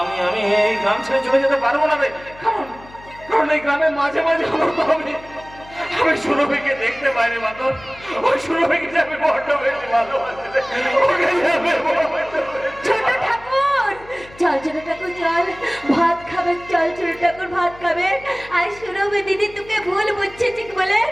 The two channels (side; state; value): left; noise; hum, 21 dB below the sound